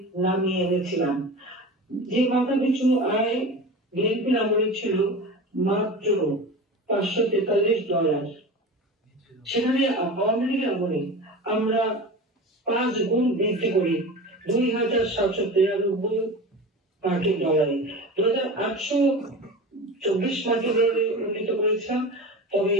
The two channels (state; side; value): normal; both; correlation 0.31